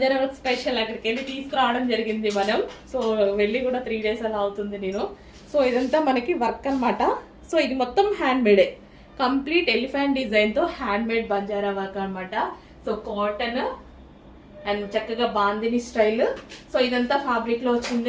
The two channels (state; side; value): identical; both; correlation 1.00